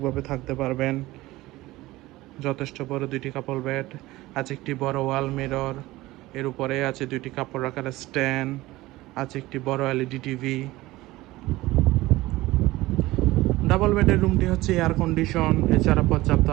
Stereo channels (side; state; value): left; quieter; 18.5 dB